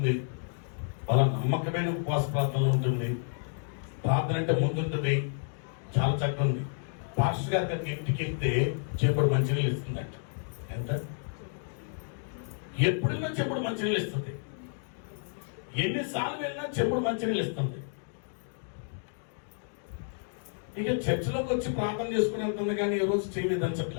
బల నమ్మకమైన ఉపవాస ప్రార్థనలో ఉంటుంది, ప్రార్థన అంటే ముందుంటుంది, చాలా చక్కగా ఉంది. పాస్టర్ గారి దగ్గర ఇంటికి వెళ్తే చెప్పుడు మంచినీళ్ళు ఇస్తుందంట. ఎంత ఎప్పుడైనా చెప్పుడు మంచినీళ్ళు ఇస్తుంది, ఎన్నిసార్లు వెళ్ళినా చెప్పుడు మంచినీళ్ళు ఇస్తుంది. ఇక చర్చిలోకి వచ్చి ప్రార్థన చేసుకుని వెళ్తుంది, కానీ ఈ రోజు చేయలేదని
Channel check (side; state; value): right; silent; digital silence